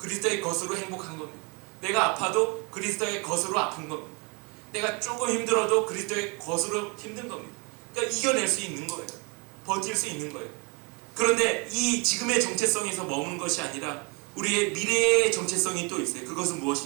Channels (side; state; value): left; quieter; 31.3 dB